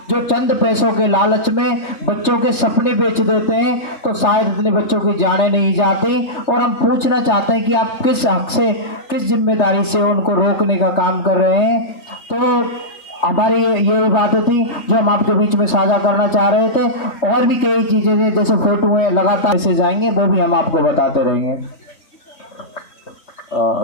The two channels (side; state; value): right; late; 3.4 ms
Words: जो चंद पैसों के लालच में बच्चों के सपने बेच देते हैं, तो शायद इतने बच्चों की जाने नहीं जाती। और हम पूछना चाहते हैं कि आप किस हक से, किस जिम्मेदारी से उनको रोकने का काम कर रहे हैं। तो हमारी यही बातें थी जो हम आपके बीच में साझा करना चाह रहे थे। और भी कई चीजें हैं, जैसे फोटो है लगातार से जाएंगे, वो भी हम आपको बताते रहेंगे।